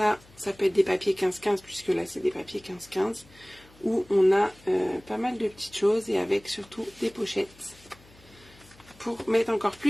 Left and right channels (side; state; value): left; noise; hum, 26 dB below the sound